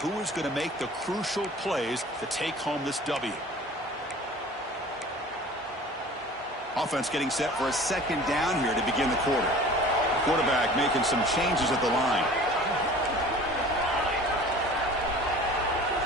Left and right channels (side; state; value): both; normal; correlation 0.44